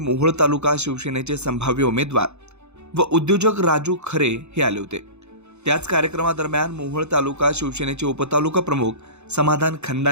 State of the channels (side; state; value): left; late; 0.81 ms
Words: तालुका शिवसेनेचे संभाव्य उमेदवार व उद्योजक राजू खरे हे आले होते। त्याच कार्यक्रमादरम्यान मोहोळ तालुका शिवसेनेचे उपतालुका प्रमुख समाधान